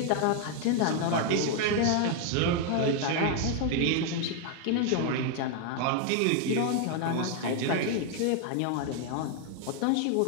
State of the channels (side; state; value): both; different; correlation 0.00